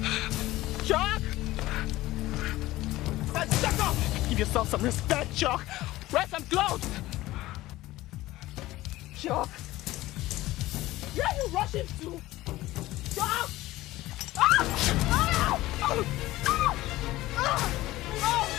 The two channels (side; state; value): right; quieter; 17.2 dB